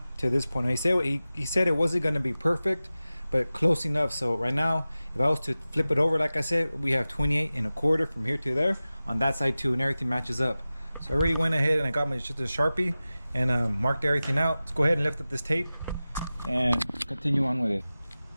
to this point. Now, he said it wasn't going to be perfect, but close enough. So right now, if I was to flip it over, like I said, we have 28.25 from here to there on that side too, and everything matches up. So I already went ahead and I got my Sharpie and marked everything out. Let's go ahead and lift up this tape and continue on with it.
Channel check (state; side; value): inverted; both; correlation -0.96